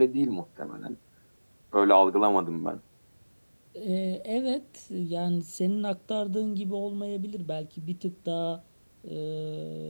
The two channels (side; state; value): both; inverted; correlation -1.00